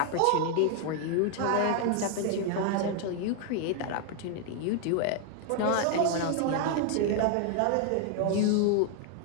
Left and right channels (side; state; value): both; different; correlation 0.00